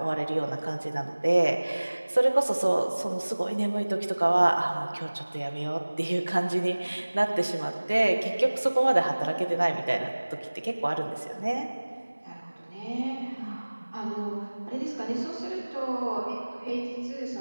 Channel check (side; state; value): both; inverted; correlation -1.00